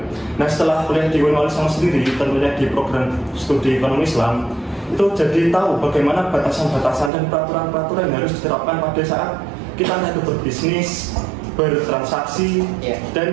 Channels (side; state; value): left; drops out; at 7.1 s